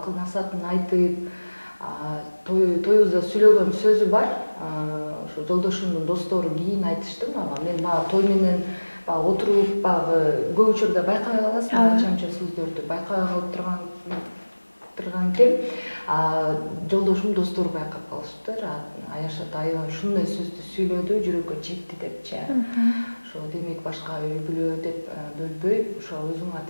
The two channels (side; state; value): both; inverted; correlation -1.00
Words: насаатын айтып, тоюбузда сүйлөгөн сөзү бар. Ошо жолдошумдун достору кийин айтышты мага. Мен баягы той менен баягы отуруп, баягы көп учурда байкай каласың, анча-мынча сөздөрдү байкай калып турган экен. Жолдошум достору байкап калышыптыр. Аяшат аябай ушундай сөздү сүйлөдү, жүрөккө жетти депчи. Ошо демек башка үй бүлө деп бөлбөй, ошо өзүң